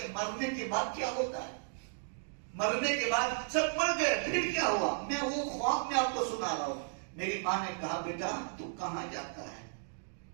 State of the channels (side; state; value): left; silent; digital silence